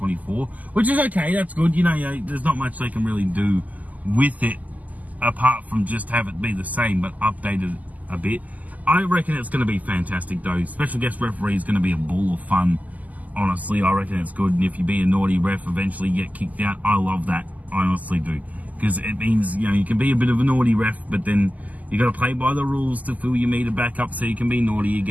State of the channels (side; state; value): left; late; 0.078 ms